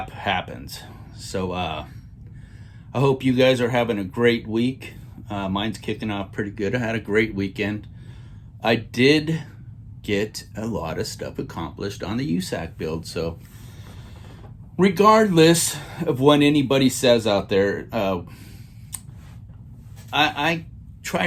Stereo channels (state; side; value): identical; both; correlation 1.00